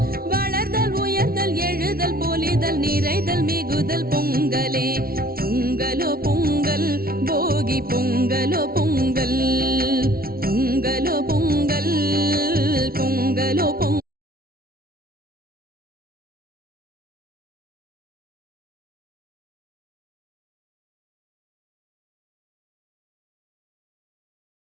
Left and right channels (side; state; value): left; late; 0.43 ms